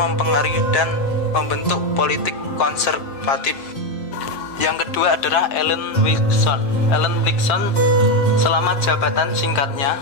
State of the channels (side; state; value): right; late; 7.5 ms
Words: dan membentuk politik konservatif. Yang kedua adalah Ellen Wilson. Ellen Wilson selama jabatan singkatnya,